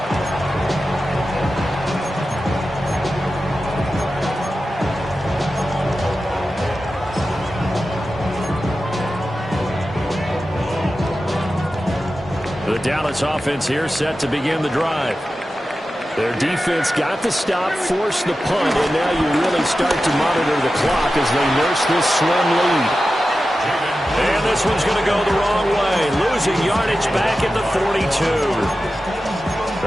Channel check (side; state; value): both; normal; correlation 0.93